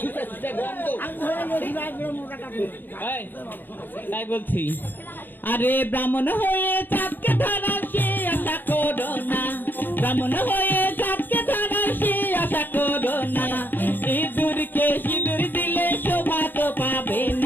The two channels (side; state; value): right; late; 0.093 ms